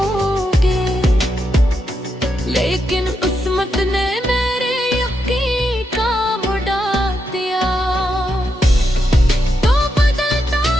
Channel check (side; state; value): both; normal; correlation 0.83